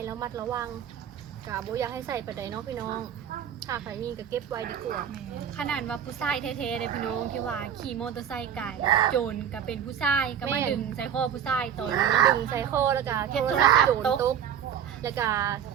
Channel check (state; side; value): quieter; left; 8.9 dB